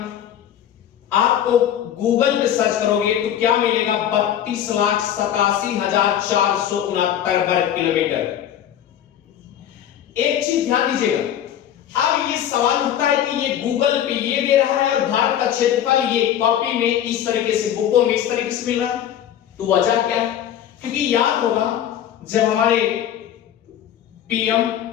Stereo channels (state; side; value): quieter; right; 10.5 dB